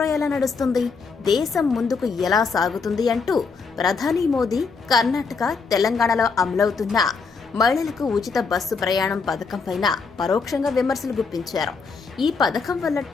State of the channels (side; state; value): right; quieter; 4.9 dB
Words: ఎలా నడుస్తుంది, దేశం ముందుకు ఎలా సాగుతుంది అంటూ ప్రధాని మోదీ కర్ణాటక, తెలంగాణలో అమలవుతున్న మహిళలకు ఉచిత బస్సు ప్రయాణం పథకం పైన పరోక్షంగా విమర్శలు గుప్పించారు. ఈ పథకం వల్ల